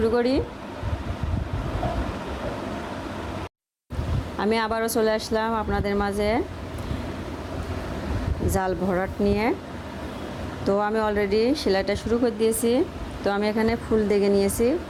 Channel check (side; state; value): both; identical; correlation 1.00